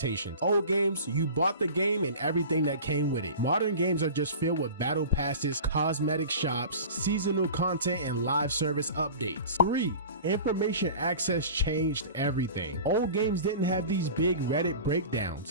Old games, you bought the game and everything that came with it. Modern games are just filled with battle passes, cosmetic shops, seasonal content, and live service updates. 3. Information access changed everything. Old games didn't have these big Reddit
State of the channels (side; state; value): both; inverted; correlation -0.37